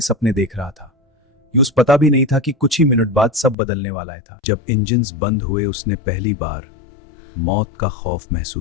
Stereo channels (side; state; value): right; drops out; at 3.6 s